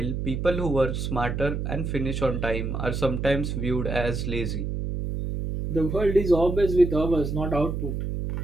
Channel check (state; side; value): noise; right; hum, 3 dB below the sound